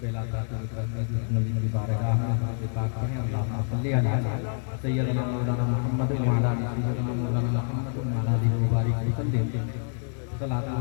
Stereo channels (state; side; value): silent; right; 57 dB below the other